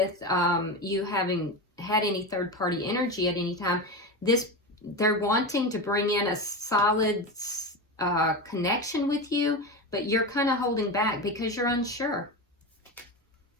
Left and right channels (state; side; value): normal; both; correlation 0.20